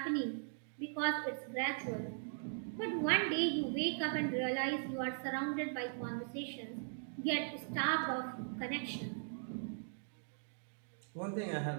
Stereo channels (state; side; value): silent; left; digital silence